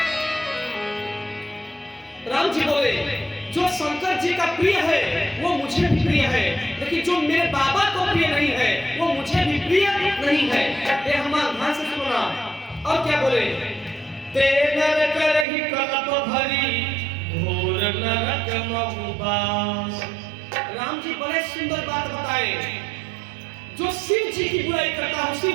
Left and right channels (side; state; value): left; drops out; at 15.5 s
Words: राम जी बोले, जो शंकर जी का प्रिय है वो मुझे भी प्रिय है, लेकिन जो मेरे बाबा को प्रिय नहीं है वो मुझे भी प्रिय नहीं है। ये हमारा ध्यान से सुनना। और क्या बोले, ते नर करहि कल्प भरी, घोर नरक महु। राम जी बड़े सुंदर बात बताए। जो शिव जी की बुराई करता है, शिव